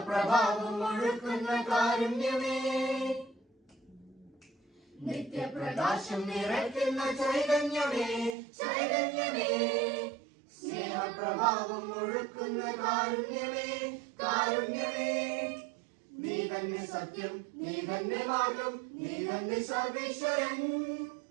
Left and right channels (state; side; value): drops out; left; at 8.3 s